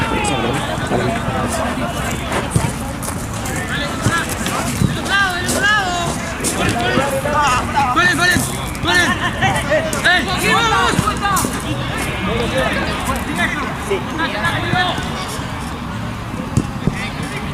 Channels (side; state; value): both; identical; correlation 1.00